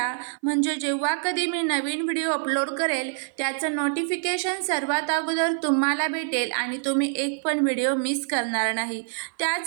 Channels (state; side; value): silent; left; 55 dB below the other